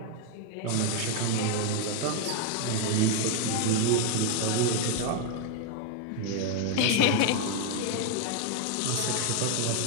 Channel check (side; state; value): both; different; correlation 0.01